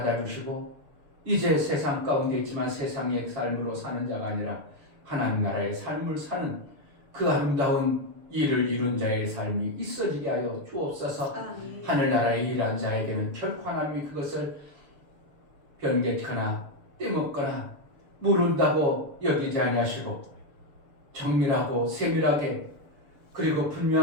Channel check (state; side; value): late; left; 6.9 ms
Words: 이제 세상 가운데 있지만 세상의 삶으로 사는 자가 아니라 하나님 나라의 삶을 사는 그 아름다운 일을 이룬 자의 삶이 있어지게 하여 주옵소서. 아멘. 하늘나라에 일한 자에게는 결코 하나님이 그것을 변개하거나 떼먹거나 모른다고 여기지 아니하시고 정밀하고 세밀하게 그리고